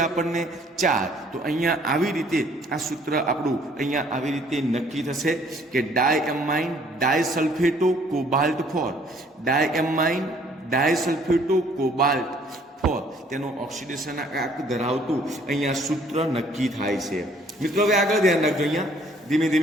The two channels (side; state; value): both; normal; correlation 0.60